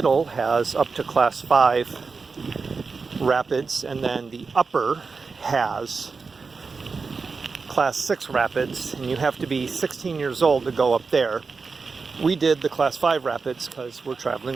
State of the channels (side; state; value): left; quieter; 4.6 dB